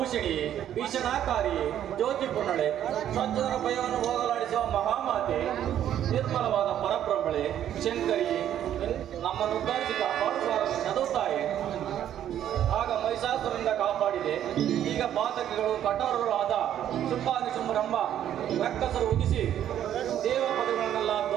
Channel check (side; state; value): left; quieter; 10.8 dB